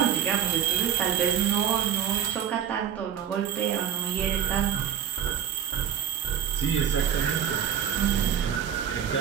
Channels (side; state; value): left; quieter; 9.2 dB